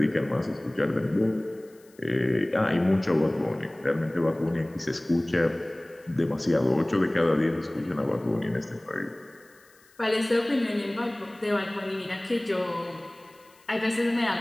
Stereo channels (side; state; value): left; noise; hiss, 30 dB below the sound